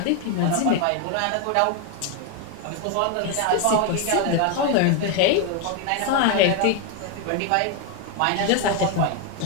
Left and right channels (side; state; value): both; different; correlation 0.01